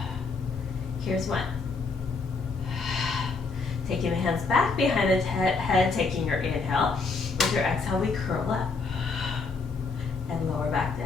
here's 1. Taking the hands back behind the head, taking your inhale. With your exhale, we curl up and lower back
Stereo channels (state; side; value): quieter; right; 4.3 dB